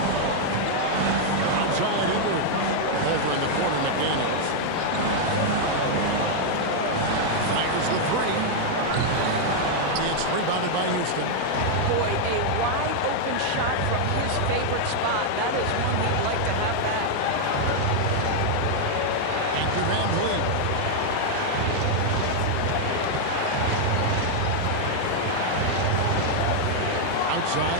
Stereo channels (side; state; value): both; different; correlation 0.00